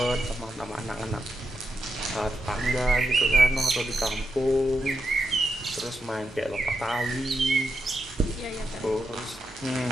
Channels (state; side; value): normal; both; correlation 0.86